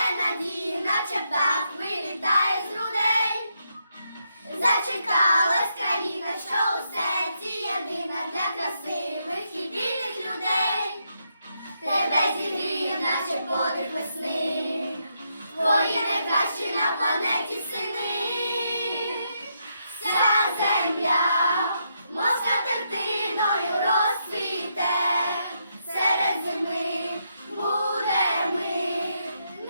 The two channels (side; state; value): both; inverted; correlation -0.79